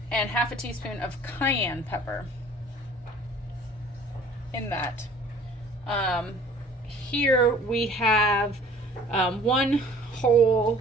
and 1/2 teaspoon of cayenne pepper in that. Here we have 1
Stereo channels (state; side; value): normal; both; correlation 0.51